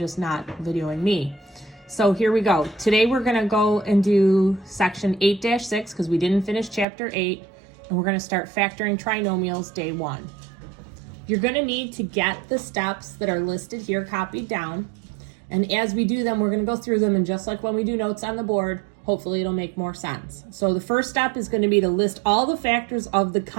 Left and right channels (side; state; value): left; drops out; at 6.9 s